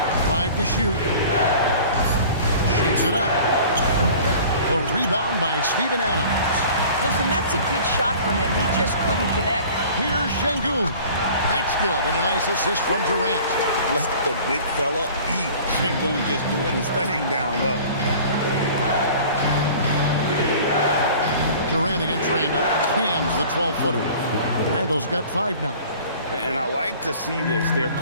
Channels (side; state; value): both; inverted; correlation -0.45